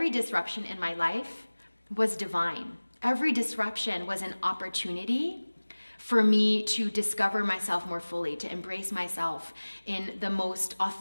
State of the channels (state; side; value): inverted; both; correlation -1.00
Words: disruption in my life was divine. Every disruption was an opportunity for me to discover myself more fully, to embrace myself in the most